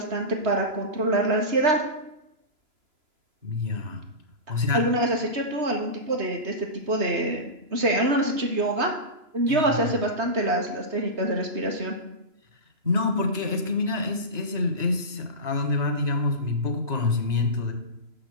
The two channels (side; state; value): left; late; 3.0 ms